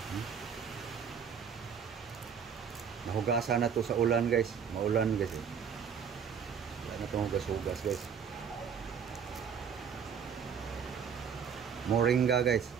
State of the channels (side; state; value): left; quieter; 7.2 dB